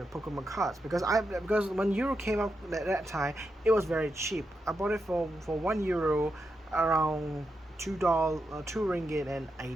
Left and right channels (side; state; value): both; normal; correlation 0.86